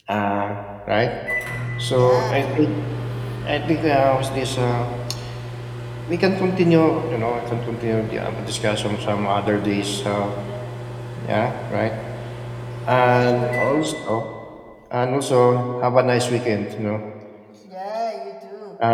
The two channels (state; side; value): identical; both; correlation 1.00